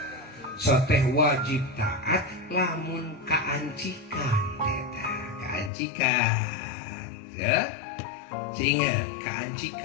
soteh wajib taat lamun kaancikan eta, kaancikan ya. Sehingga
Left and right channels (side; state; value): right; drops out; at 5.7 s